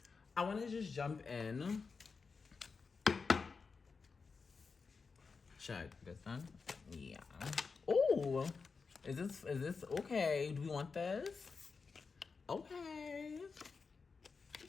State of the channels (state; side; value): quieter; right; 4.9 dB